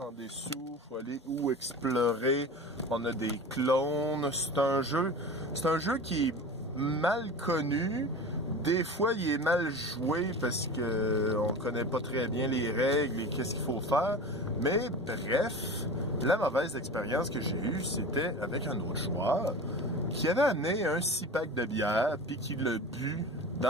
dessous, il faut aller où explorer, on a des clones, c'est un jeu qui est mal connu, des fois il est mal joué parce que on connaît pas très bien les règles et qu'est-ce qu'il faut faire, mais bref, la mauvaise expérience que j'ai eue, c'était avec un autre joueur qui avait amené un 6-pack de bière puis qui l'a bu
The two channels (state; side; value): normal; both; correlation 0.33